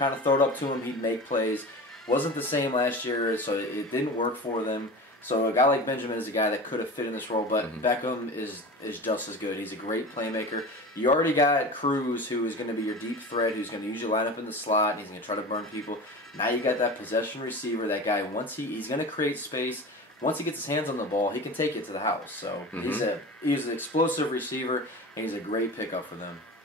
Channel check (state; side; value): normal; both; correlation 0.32